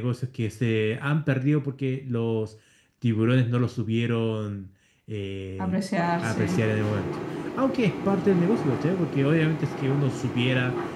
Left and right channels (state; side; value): identical; both; correlation 1.00